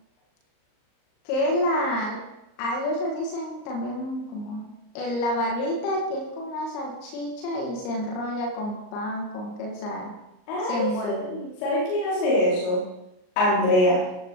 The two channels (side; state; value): right; late; 38 ms